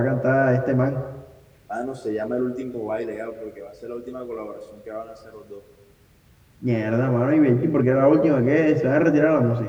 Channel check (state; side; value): identical; both; correlation 1.00